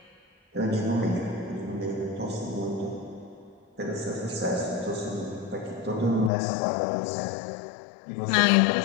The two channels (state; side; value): drops out; right; at 6.3 s